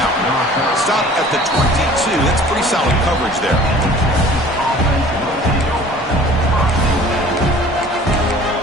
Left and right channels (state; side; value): normal; both; correlation 0.48